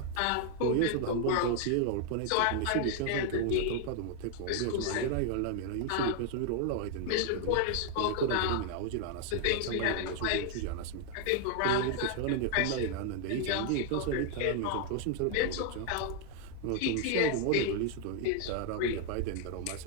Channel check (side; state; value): both; different; correlation 0.00